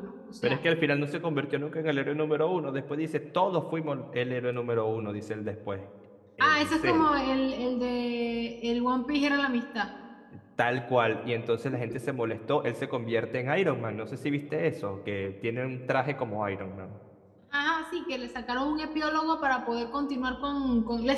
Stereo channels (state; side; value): identical; both; correlation 1.00